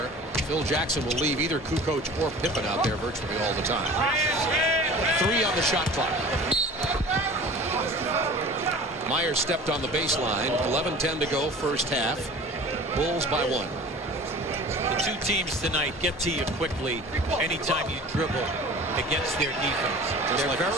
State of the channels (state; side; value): normal; both; correlation 0.41